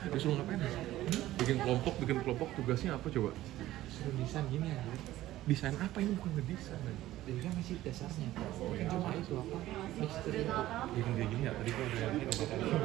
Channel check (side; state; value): left; quieter; 15.1 dB